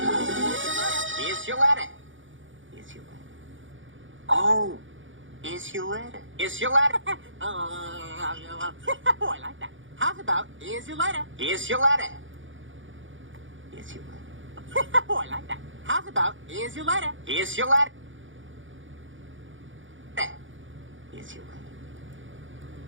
Here's your letter. Here's your letter. Oh, here's your letter. Here's your letter. Oh, I like that. How's about? Here's your letter. Here's your letter. Here's your letter. Oh, I like that. How's about? Here's your letter. Here's your letter. Here's your letter.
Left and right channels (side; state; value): left; late; 0.56 ms